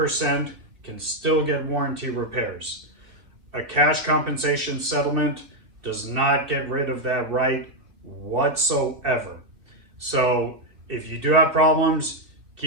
can still get warranty repairs. A cash compensation settlement does not get rid of that right whatsoever. So if you do have problems,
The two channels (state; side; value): late; left; 2.6 ms